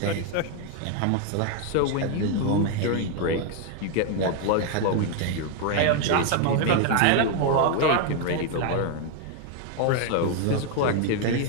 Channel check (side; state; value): both; different; correlation 0.01